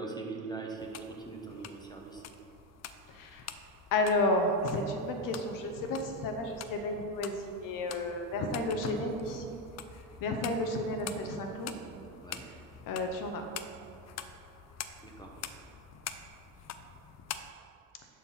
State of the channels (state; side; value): normal; both; correlation 0.08